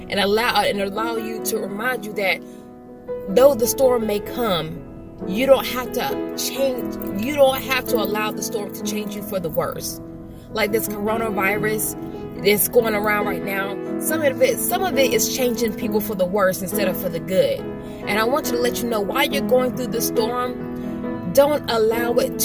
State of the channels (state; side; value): identical; both; correlation 1.00